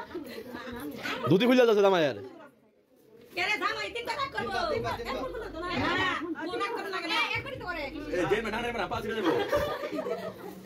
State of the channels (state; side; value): identical; both; correlation 1.00